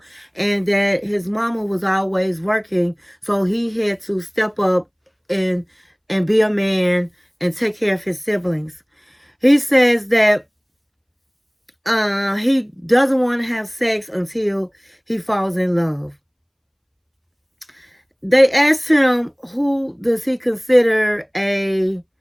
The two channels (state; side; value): identical; both; correlation 1.00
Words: and that his mama was always working, so he had to step up and be a man and take care of his siblings. He says that he doesn't want to have sex until he falls in love. They asked him who does he consider a